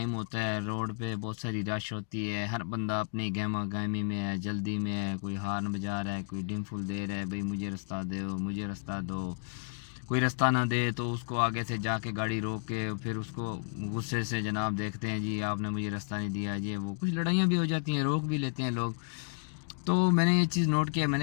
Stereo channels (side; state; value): right; silent; digital silence